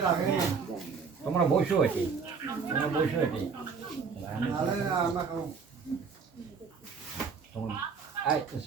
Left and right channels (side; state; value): left; quieter; 5.6 dB